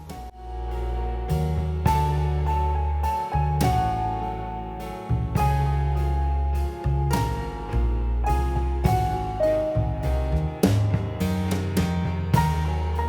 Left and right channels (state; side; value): identical; both; correlation 1.00